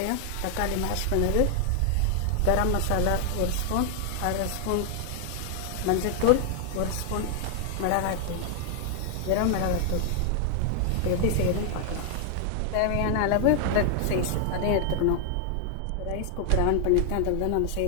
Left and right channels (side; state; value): both; different; correlation 0.00